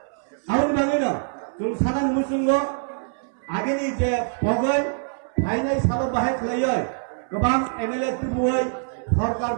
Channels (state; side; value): silent; left; 62 dB below the other